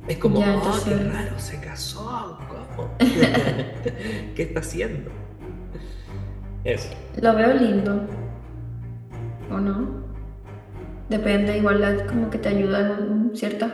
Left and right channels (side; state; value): both; identical; correlation 1.00